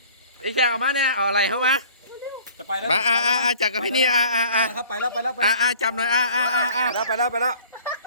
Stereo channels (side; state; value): both; inverted; correlation -0.50